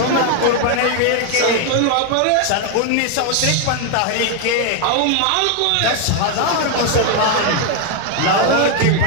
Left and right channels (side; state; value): both; different; correlation 0.01